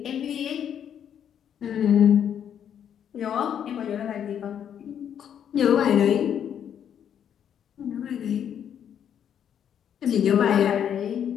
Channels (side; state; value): right; quieter; 9.0 dB